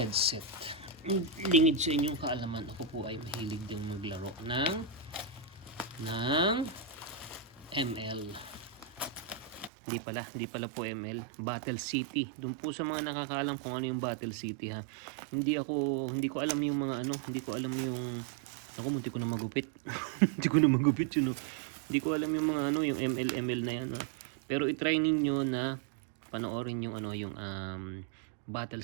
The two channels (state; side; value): drops out; left; at 9.7 s